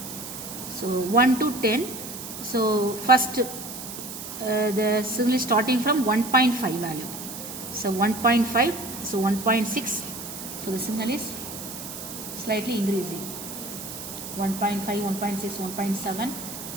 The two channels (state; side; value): noise; right; hiss, 10 dB below the sound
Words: So 1 to 10. So first the signal is starting from 1.5 value. So 1.5, so 1.6. So the signal is slightly increasing. 1.5, 1.6, 1.7.